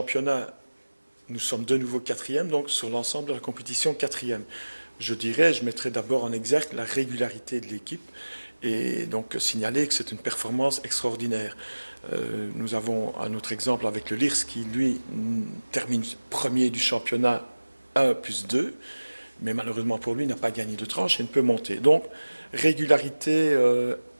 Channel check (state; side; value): inverted; both; correlation -1.00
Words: nous sommes de nouveau quatrième, donc sur l'ensemble de la compétition quatrième. Je mettrai d'abord en exergue la régularité de l'équipe et donc signaler que c'est une performance extraordinaire. Nous avons un autre exemple avec le LIRS qui, lui, termine premier du championnat 1 plus 2, mais malheureusement pour lui, n'a pas gagné de tranche et ne peut monter. Donc, régularité